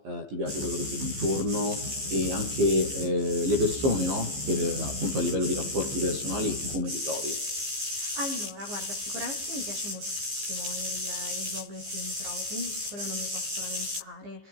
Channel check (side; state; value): left; late; 15 ms